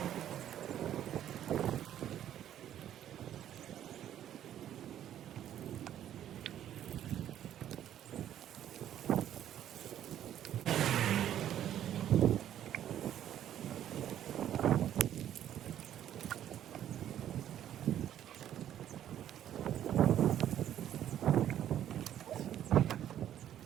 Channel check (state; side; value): quieter; left; 11.0 dB